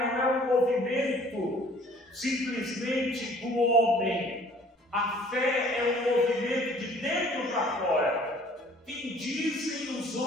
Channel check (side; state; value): both; normal; correlation 0.54